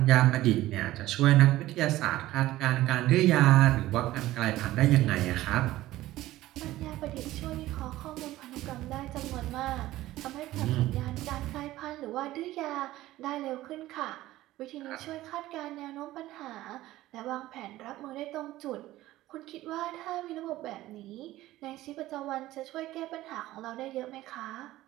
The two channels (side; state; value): left; quieter; 16.0 dB